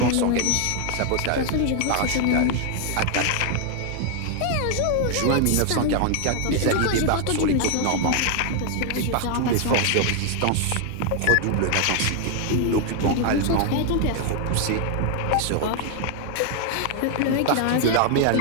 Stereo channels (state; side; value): different; both; correlation 0.00